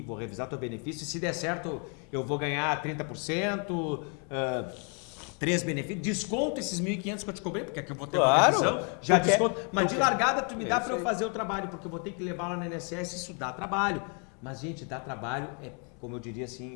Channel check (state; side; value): quieter; right; 38.0 dB